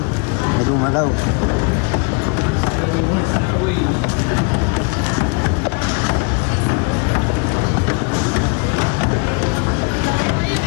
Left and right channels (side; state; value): right; quieter; 32.1 dB